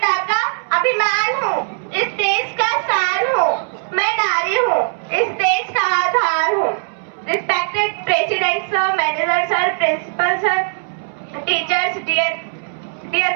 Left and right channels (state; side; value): silent; left; 67 dB below the other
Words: का अभिमान हूँ, इस देश का शान हूँ, मैं नारी हूँ, इस देश का आधार हूँ। Respected President Sir, Manager Sir, Principal Sir, Teachers, dear